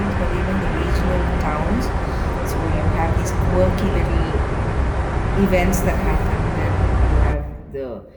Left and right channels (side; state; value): both; identical; correlation 1.00